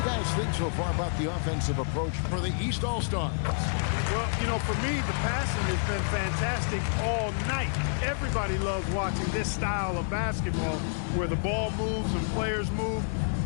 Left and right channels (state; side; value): silent; right; digital silence